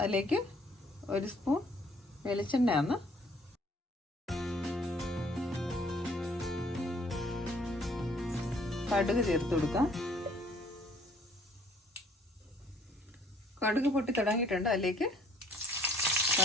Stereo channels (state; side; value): normal; both; correlation 0.59